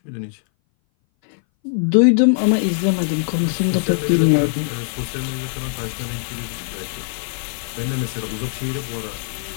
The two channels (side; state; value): right; silent; 60 dB below the other